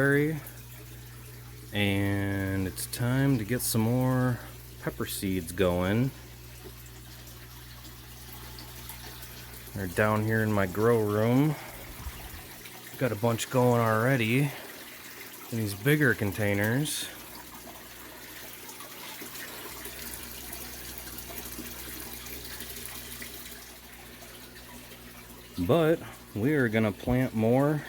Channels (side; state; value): both; identical; correlation 1.00